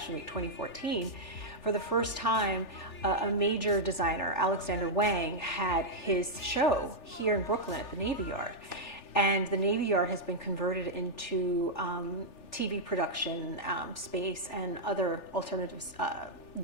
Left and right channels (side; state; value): right; late; 3.4 ms